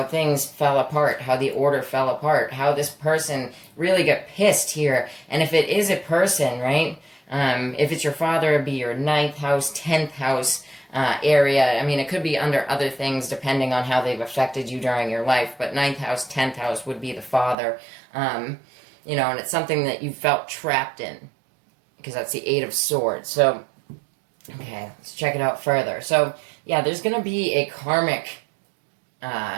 things fell apart, how the order fell apart, how this person really got pissed here. And if it is a person, right, if it's your father, it'd be your 9th house, 10th house, area. I mean, it could be under other things depending on how they've affected you during your life, but 9th house, 10th house would be the father. You know, and it's something that you felt trapped in, because that's the 8 of Swords. So, okay, let's check it out further. So, yeah, there's going to be a karmic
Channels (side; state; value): left; drops out; at 17.6 s